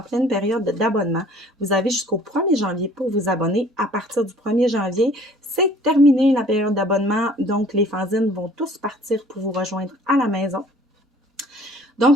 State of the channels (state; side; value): normal; both; correlation 0.53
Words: pleine période d'abonnement. Vous avez jusqu'au 1er janvier pour vous abonner. À partir du 1er janvier, c'est terminé la période d'abonnement. Donc, les fanzines vont tous partir pour vous rejoindre à la maison.